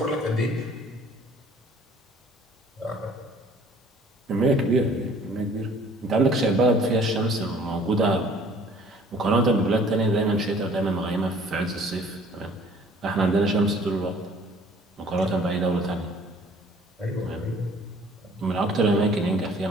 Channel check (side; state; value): both; normal; correlation 0.54